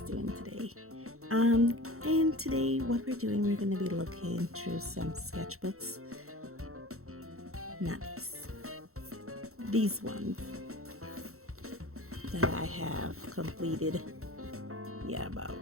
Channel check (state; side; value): late; left; 0.63 ms